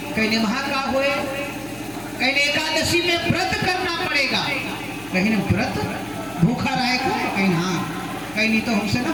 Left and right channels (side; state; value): left; noise; hum, 22 dB below the sound